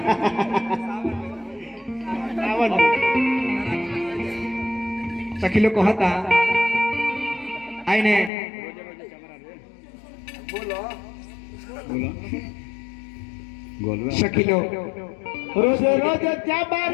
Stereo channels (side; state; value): right; drops out; at 8.3 s